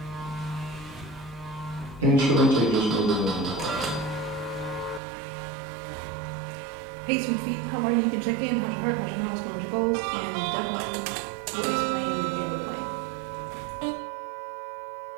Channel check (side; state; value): left; drops out; at 5.0 s